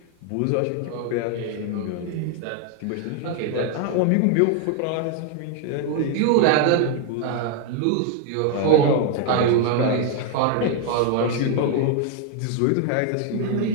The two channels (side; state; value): both; different; correlation 0.00